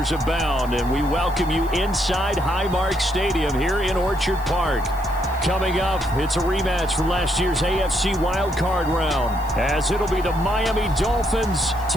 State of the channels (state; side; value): noise; left; hiss, 22 dB below the sound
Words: abound, and we welcome you inside Highmark Stadium here in Orchard Park. Coming up, it's a rematch from last year's AFC wildcard round, as it'll be the Miami Dolphins